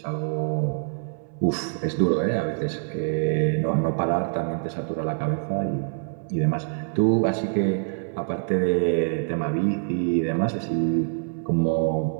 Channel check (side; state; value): left; silent; 62 dB below the other